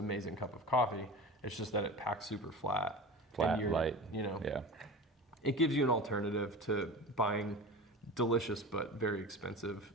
cup of coffee. It's just that it packs super flat. Flat, and light. Yeah. It gives you an alternative to buying delicious but very expensive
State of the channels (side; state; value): both; normal; correlation 0.32